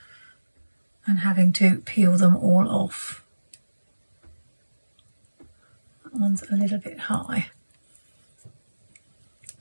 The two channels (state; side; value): inverted; both; correlation -1.00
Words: and having to peel them all off. That one's a little bit high.